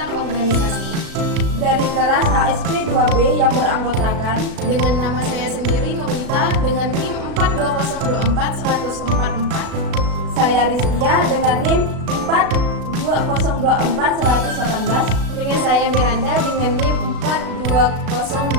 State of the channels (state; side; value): late; left; 36 ms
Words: organisasi dari kelas ASP 2B yang beranggotakan dengan nama saya sendiri Nurita dengan NIM 42024-144. Saya Rizkia dengan NIM 42024-118. Dengan saya Miranda dengan NIM